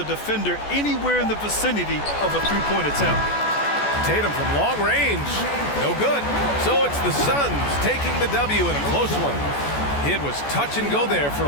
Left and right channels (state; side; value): late; right; 14 ms